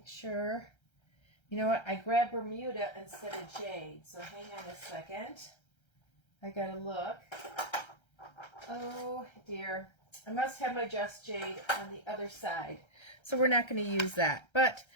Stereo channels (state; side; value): late; right; 1.3 ms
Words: sure, you know what, I grabbed Bermuda instead of Jade, so hang on a second. I gotta look. Oh dear, I must have my Just Jade on the other side. So we're not going to use that.